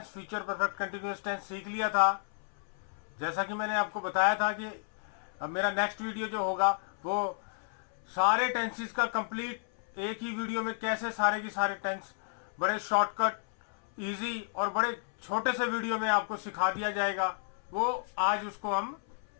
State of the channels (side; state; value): right; silent; 56 dB below the other